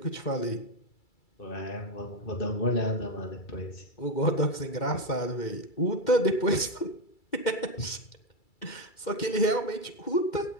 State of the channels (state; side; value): late; right; 2.3 ms